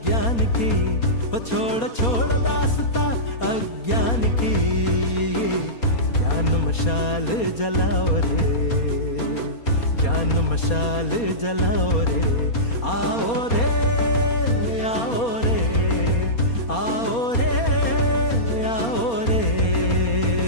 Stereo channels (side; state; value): right; late; 4.3 ms